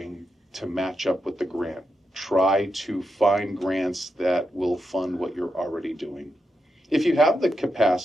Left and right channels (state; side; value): normal; both; correlation 0.86